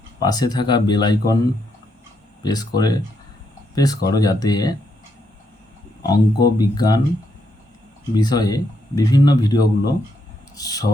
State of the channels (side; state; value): both; normal; correlation 0.78